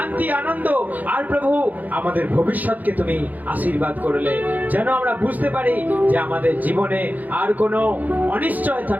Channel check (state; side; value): late; left; 0.081 ms